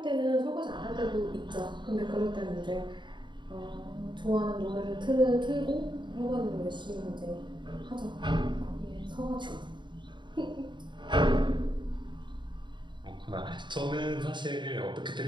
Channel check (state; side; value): late; left; 0.23 ms